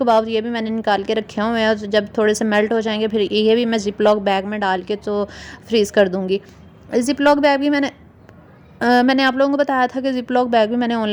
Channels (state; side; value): identical; both; correlation 1.00